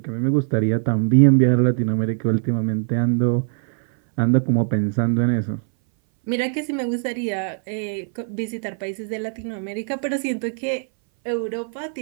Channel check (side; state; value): left; silent; 60 dB below the other